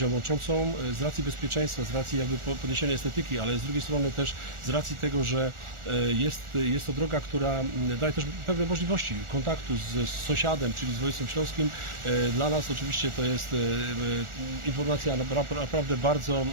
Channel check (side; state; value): left; late; 1.4 ms